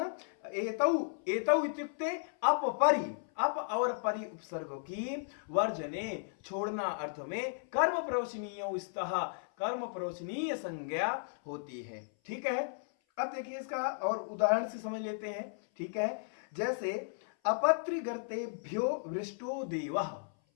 एतौ एतौ इत्युक्ते अपपरि, अप और परि उपसर्गों की वर्जने छोड़ना अर्थ में कर्म प्रवचनीय स्तः, कर्म प्रवचनीय संज्ञा होती है, ठीक है। अब देखिए इसका और उदाहरण से समझ लेते हैं, ठीक है। जैसे अपत्रिगर्तेभ्यो वृष्टो देवः,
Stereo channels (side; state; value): right; silent; 55 dB below the other